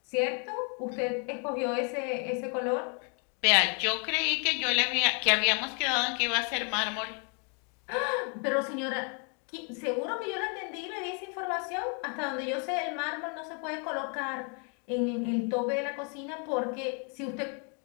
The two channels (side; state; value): right; quieter; 38.3 dB